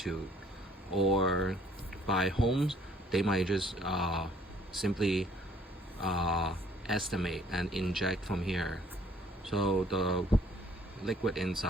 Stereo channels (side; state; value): both; normal; correlation 0.60